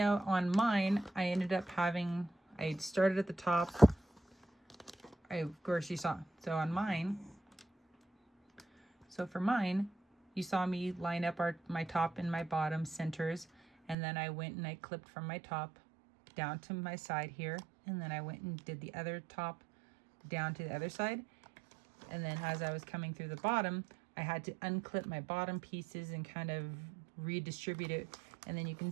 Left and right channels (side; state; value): left; drops out; at 14.0 s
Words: on mine, I ended up having, I started at the top. Of course you saw, so on mine, so for mine, you saw me line up my top and my bottom centers, and then I went and I clipped from my top down to my side here, and then I went and did the other top down to the other side. And then as I was coming through the bottom, I had to unclip my bottom pieces and kind of redistribute it. And then you can